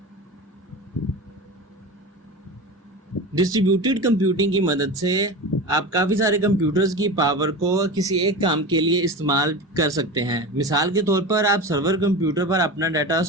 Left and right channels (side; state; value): both; normal; correlation 0.28